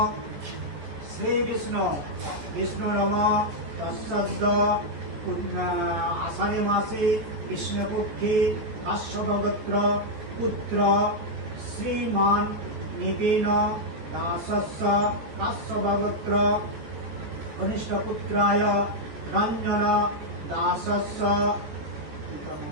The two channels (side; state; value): left; late; 14 ms